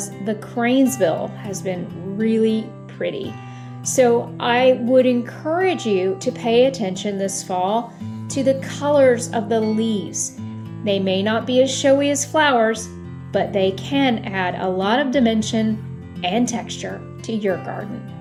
the cranesbill has been really pretty. So I would encourage you to pay attention this fall to the colors of the leaves. They may not be as showy as flowers, but they can add a lot of dimension and texture to your garden.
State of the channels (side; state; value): both; identical; correlation 1.00